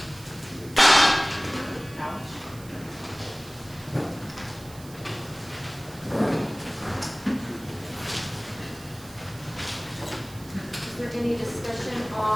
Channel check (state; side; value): noise; right; hiss, 20 dB below the sound